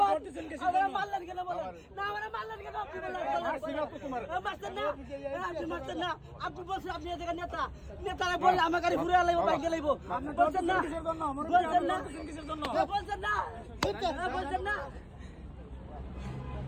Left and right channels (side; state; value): both; identical; correlation 1.00